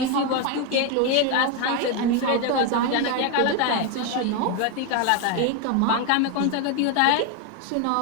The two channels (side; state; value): both; different; correlation 0.01